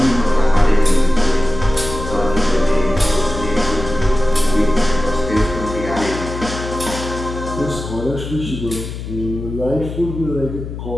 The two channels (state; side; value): noise; left; hum, 8 dB below the sound